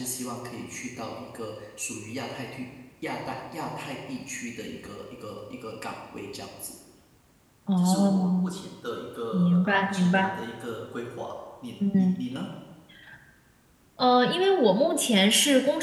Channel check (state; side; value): identical; both; correlation 1.00